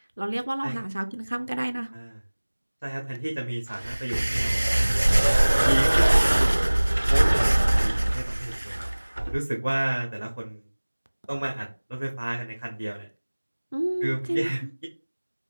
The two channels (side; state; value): both; inverted; correlation -1.00